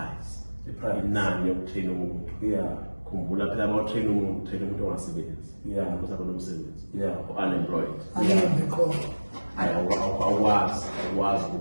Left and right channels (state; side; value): inverted; both; correlation -1.00